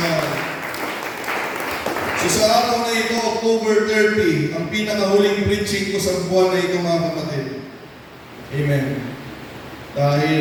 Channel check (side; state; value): both; identical; correlation 1.00